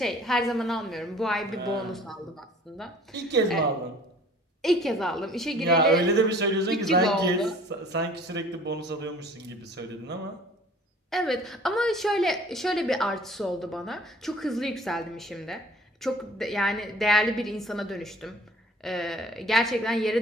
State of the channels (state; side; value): normal; both; correlation 0.51